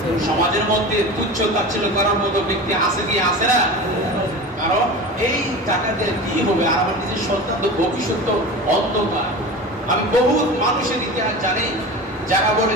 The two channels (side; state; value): both; normal; correlation 0.31